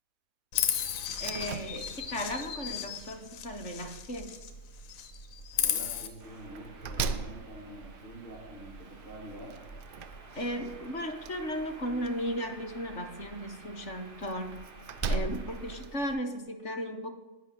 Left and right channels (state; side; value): late; right; 3.9 ms